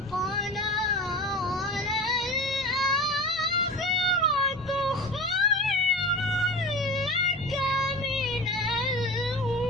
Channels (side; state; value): both; normal; correlation 0.32